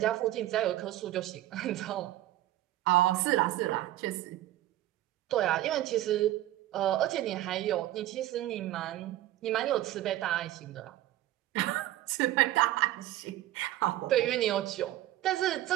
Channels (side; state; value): left; quieter; 14.6 dB